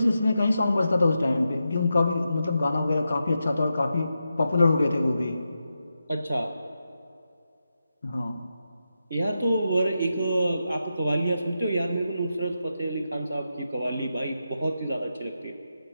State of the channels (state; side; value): inverted; both; correlation -0.88